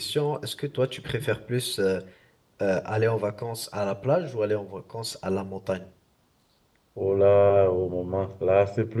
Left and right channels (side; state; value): both; identical; correlation 1.00